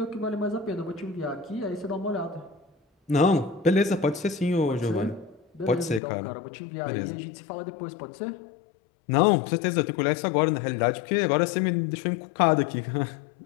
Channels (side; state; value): right; drops out; at 6.0 s